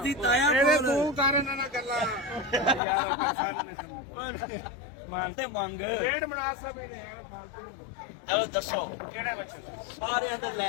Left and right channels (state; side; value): drops out; right; at 2.8 s